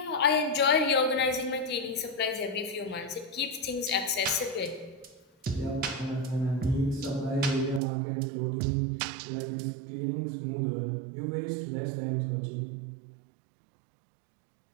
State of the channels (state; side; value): drops out; left; at 7.8 s